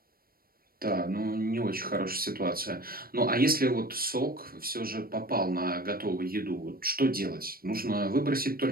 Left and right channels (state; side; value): late; left; 0.43 ms